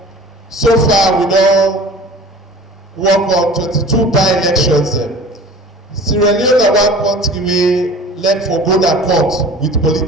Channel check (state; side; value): normal; both; correlation 0.42